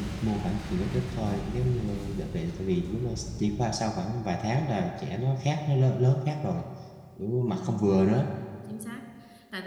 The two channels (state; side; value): identical; both; correlation 1.00